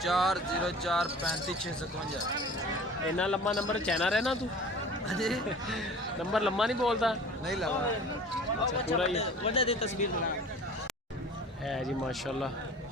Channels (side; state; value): both; normal; correlation 0.42